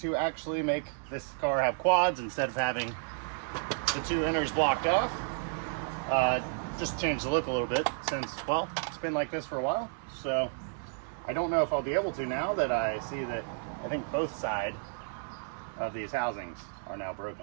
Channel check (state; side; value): silent; left; digital silence